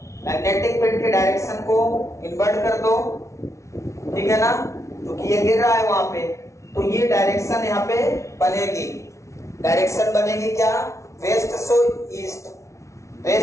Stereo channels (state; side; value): late; right; 0.14 ms